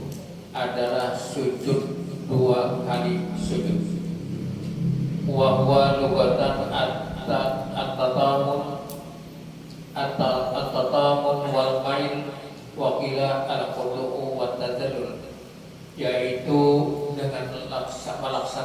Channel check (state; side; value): identical; both; correlation 1.00